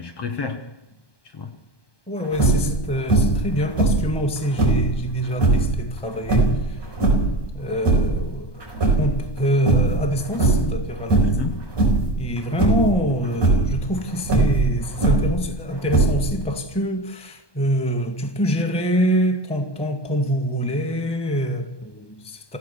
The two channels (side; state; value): right; late; 1.2 ms